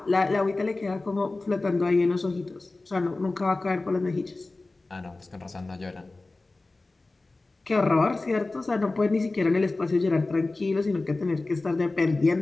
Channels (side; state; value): right; quieter; 3.2 dB